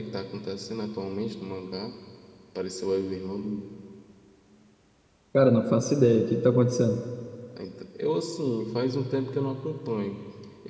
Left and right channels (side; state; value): both; identical; correlation 1.00